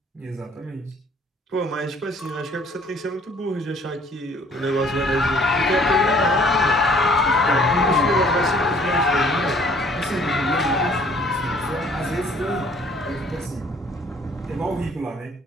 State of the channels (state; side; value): normal; both; correlation 0.57